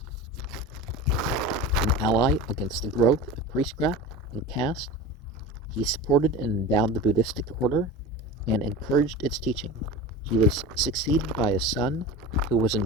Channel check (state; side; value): normal; both; correlation 0.31